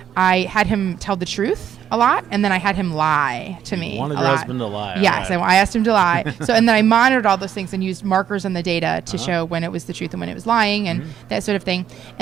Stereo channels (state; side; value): quieter; left; 9.5 dB